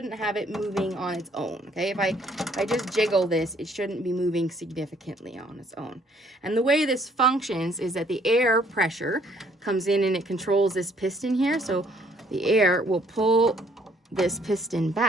have it moving on its own, okay? If I just jiggle this, it shouldn't be moving significantly on its own. And the way this functions is that the air pressure comes in and it controls this piston here. So the air will pull this piston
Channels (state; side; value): normal; both; correlation 0.64